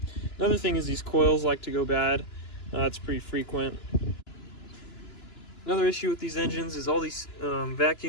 Another thing is these coils like to go bad. It's pretty frequent. Another issue with these engines is all these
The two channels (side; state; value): right; late; 2.9 ms